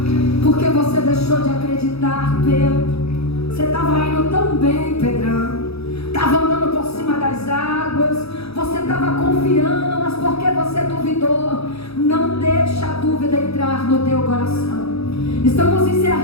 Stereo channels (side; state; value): right; late; 0.78 ms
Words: Por que você deixou de acreditar, Pedro? Você estava indo tão bem, Pedrão. Estava andando por cima das águas. Você estava confiando, mas por que você duvidou? Não deixa a dúvida entrar no teu coração. Estamos